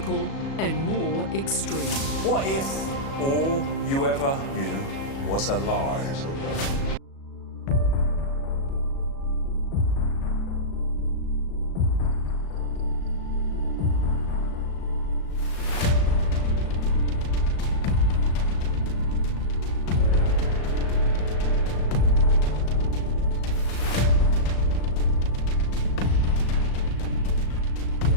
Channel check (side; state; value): right; late; 37 ms